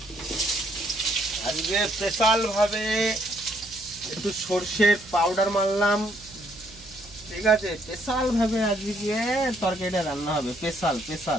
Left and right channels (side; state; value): right; noise; hum, 21 dB below the sound